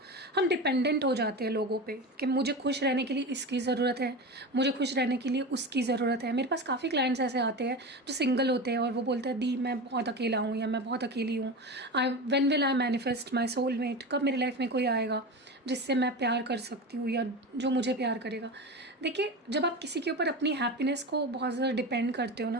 हम डिपेंडेंट हो जाते हैं लोगों पे कि मुझे खुश रहने के लिए इसकी ज़रूरत है, मुझे खुश रहने के लिए उसकी ज़रूरत है। मेरे पास काफ़ी क्लाइंट्स ऐसे आते हैं जो सिंगल होते हैं और वो बोलते हैं दी मैं बहुत अकेला हूँ या मैं बहुत अकेली हूँ, when will I manifest my soulmate, कब मेरी लाइफ में कोई आएगा जिससे मैं प्यार कर सकती हूँ या जो मुझे प्यार करेगा। देखिए जब आप किसी के ऊपर अपनी हैप्पीनेस को बहुत ज़्यादा डिपेंड करते हो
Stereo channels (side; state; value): both; normal; correlation 0.26